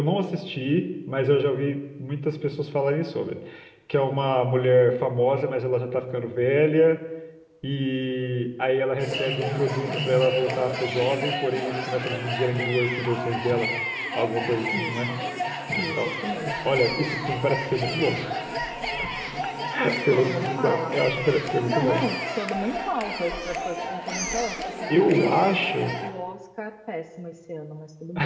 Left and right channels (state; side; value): identical; both; correlation 1.00